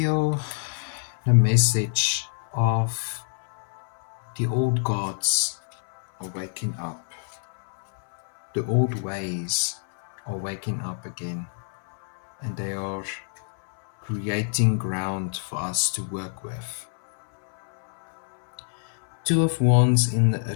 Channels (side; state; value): right; silent; 61 dB below the other